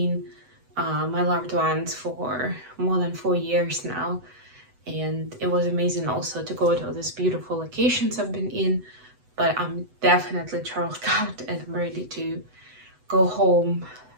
my loved ones for more than 4 years now, and it was amazing also to go to all these beautiful locations I've been in. But I'm definitely charged out and I'm ready to go home,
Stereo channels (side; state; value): left; late; 8.0 ms